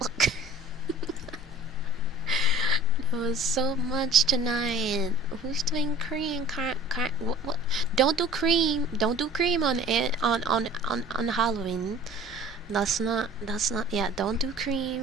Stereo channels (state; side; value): normal; both; correlation 0.46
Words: There was so much tonight. Who's doing cream? What? Don't do cream. Don't do cream on it on Halloween. That's not. Yeah, don't do